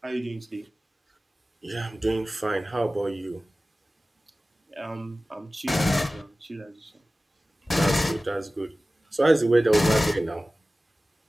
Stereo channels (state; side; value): normal; both; correlation 0.97